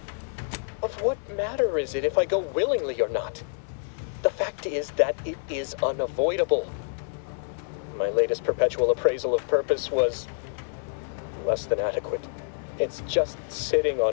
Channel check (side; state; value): right; silent; digital silence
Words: Of what matter is it if I go willingly or not? The fact fact is that it is unavoidable. My latest perpetual appraisal of purpose was less than adequate. It's just sitting